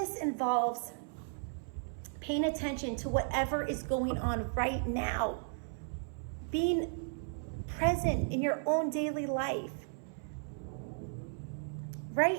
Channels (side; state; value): left; silent; 54 dB below the other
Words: involves paying attention to whatever is going on right now, being present in your own daily life.